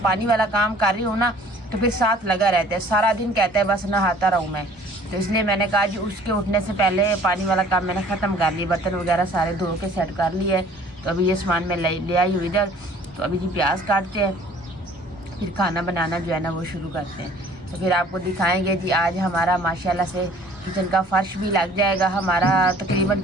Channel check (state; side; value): normal; both; correlation 0.53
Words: पानी वाला काम कर रही हूँ ना तो फिर साथ लगा रहता है, सारा दिन कहता है बस नहाता रहूँ मैं। तो इसलिए मैंने कहा जी उसके उठने से पहले पानी वाला काम मैंने ख़त्म कर लिया, बर्तन वगैरह सारे धो के सेट कर लिए है। तो अभी ये सामान मैं ले आई हूँ इधर। तो अभी जी प्याज काटते हैं, फिर खाना बनाना जो है ना वो शुरू करते हैं। तो फिर आपको दिखाएंगे जी आज हमारा माशाल्लाह से किचन का फर्श भी लग जाएगा। हमारा तकरीबन